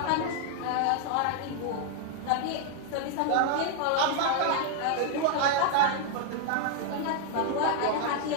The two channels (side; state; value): both; different; correlation 0.00